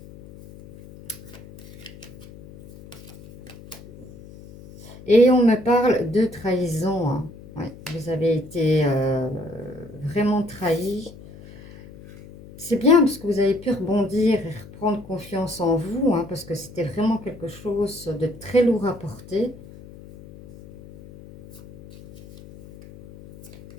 Et on me parle de trahison. Hein. Ouais, vous avez été vraiment trahi. C'est bien parce que vous avez pu rebondir et reprendre confiance en vous, hein, parce que c'était vraiment quelque chose de très lourd à porter.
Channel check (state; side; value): noise; left; hum, 18 dB below the sound